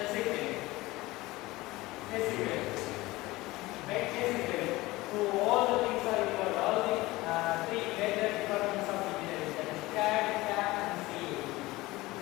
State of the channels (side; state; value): right; quieter; 19.8 dB